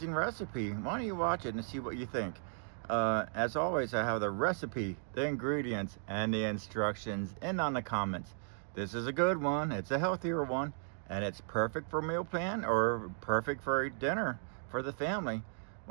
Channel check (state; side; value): silent; left; digital silence